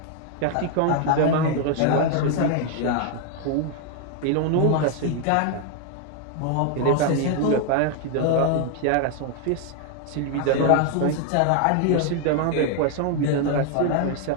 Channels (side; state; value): both; different; correlation 0.00